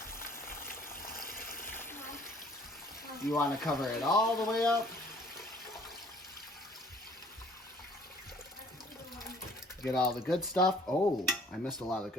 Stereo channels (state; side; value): normal; both; correlation 0.55